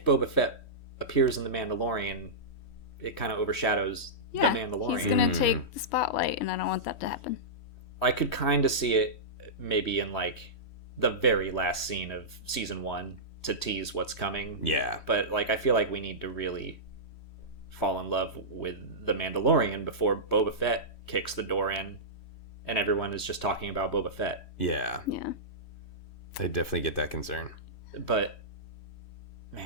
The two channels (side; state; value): right; late; 3.1 ms